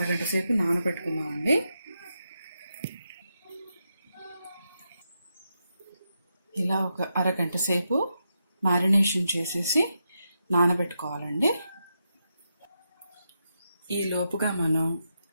సేపు నానబెట్టుకుందామండి. ఇలా ఒక అరగంట సేపు మ్యారినేషన్ చేసేసి నానబెట్టుకోవాలండి. ఈ లోపుగా మనం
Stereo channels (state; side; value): inverted; both; correlation -0.85